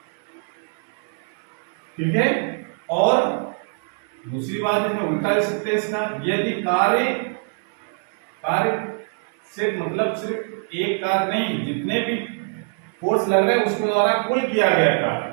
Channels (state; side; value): silent; left; 56 dB below the other